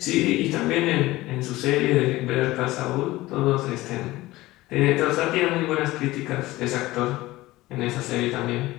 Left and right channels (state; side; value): quieter; right; 18.2 dB